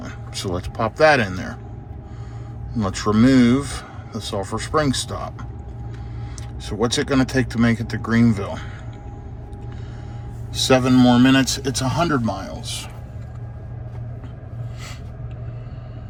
So let's pop that in there. And let's remove the Sulphur Springs stop. So what's it going to take to make it to Greenville? 7 more minutes. It's 100 miles.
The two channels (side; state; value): both; identical; correlation 1.00